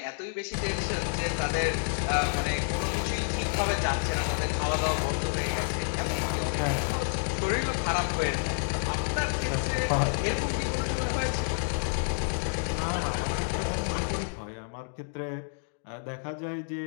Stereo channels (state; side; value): silent; right; digital silence